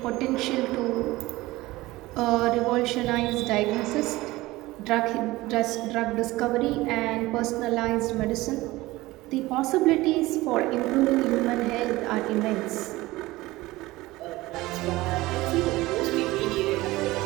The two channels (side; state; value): left; quieter; 19.1 dB